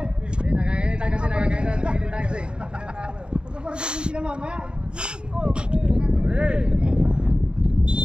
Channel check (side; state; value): left; late; 0.051 ms